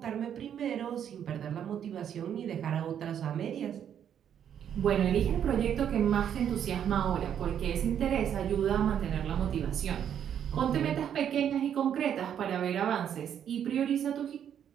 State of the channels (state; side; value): quieter; left; 9.1 dB